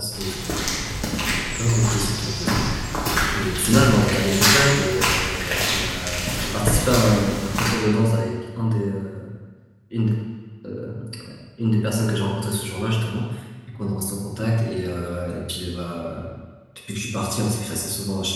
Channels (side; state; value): both; identical; correlation 1.00